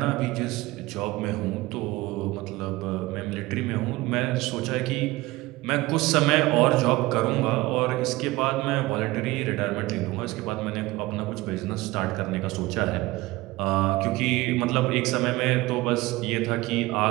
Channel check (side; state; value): left; quieter; 20.0 dB